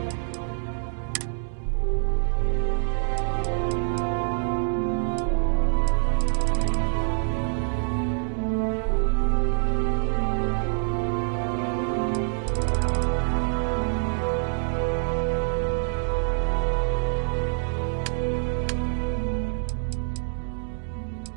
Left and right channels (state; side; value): silent; left; digital silence